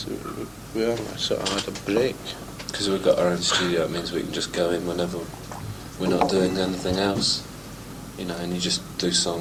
We haven't sort of had a break. Because we've got our own studio, it means we can just go in whenever we're not doing anything else. And you just do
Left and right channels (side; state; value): both; identical; correlation 1.00